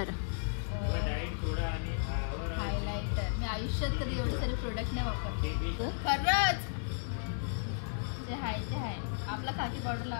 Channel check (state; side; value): silent; right; digital silence